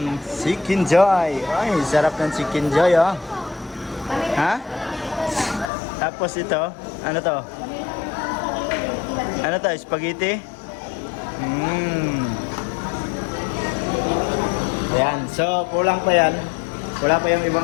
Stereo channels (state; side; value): drops out; right; at 5.7 s